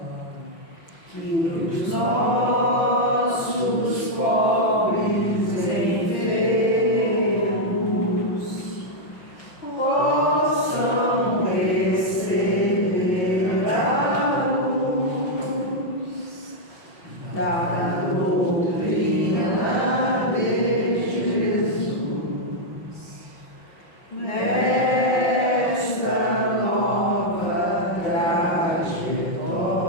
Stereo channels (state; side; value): late; right; 6.2 ms